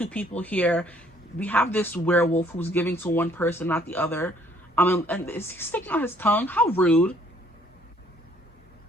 people here. We have this werewolf who's giving to one person, not the other. And is he sticking out his tongue? How rude.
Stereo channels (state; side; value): normal; both; correlation 0.62